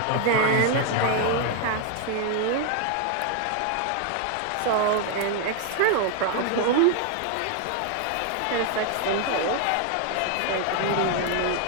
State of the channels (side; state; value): both; different; correlation 0.00